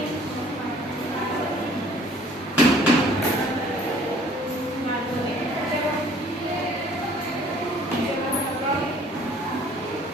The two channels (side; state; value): both; normal; correlation 0.55